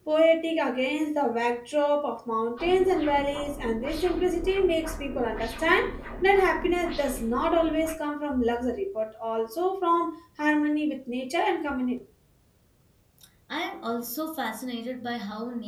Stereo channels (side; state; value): both; identical; correlation 1.00